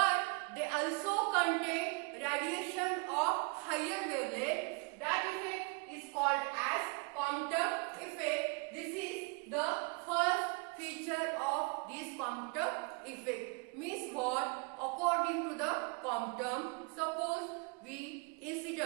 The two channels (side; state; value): left; quieter; 31.7 dB